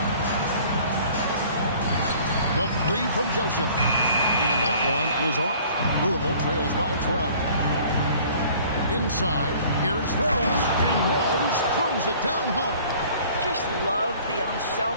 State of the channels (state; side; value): inverted; both; correlation -0.52